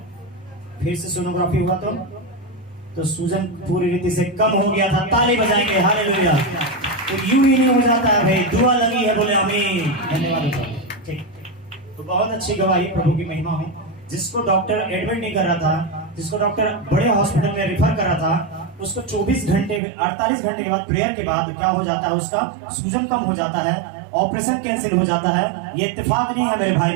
फिर से सोनोग्राफी हुआ तो सूजन पूरी रीति से कम हो गया था। ताली बजाएंगे हालेलुया। तो यूं ही नहीं हो जाता है भाई दुआ लगी है बोले आमीन धन्यवाद। ठीक तो बहुत अच्छी गवाही प्रभु की महिमा हो। जिसको डॉक्टर एडमिट नहीं कर रहा था जिसको डॉक्टर बड़े हॉस्पिटल में रिफर कर रहा था उसको 48 घंटे के बाद प्रेयर के बाद क्या हो जाता है उसका सूजन कम हो जाता है ऑपरेशन कैंसिल हो जाता है। ये इत्तेफाक नहीं है मेरे भाई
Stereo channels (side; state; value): left; drops out; at 19.8 s